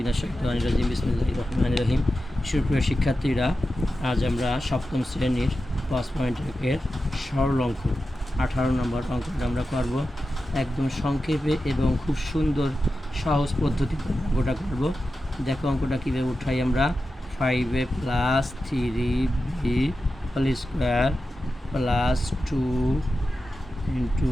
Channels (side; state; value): both; normal; correlation 0.92